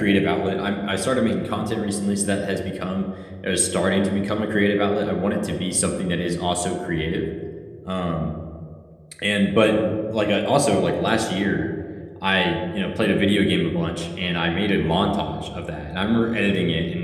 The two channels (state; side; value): identical; both; correlation 1.00